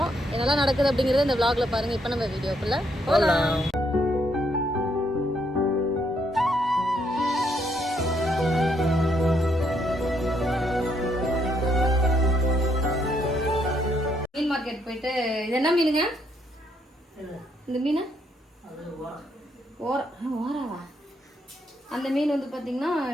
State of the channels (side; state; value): both; normal; correlation 0.73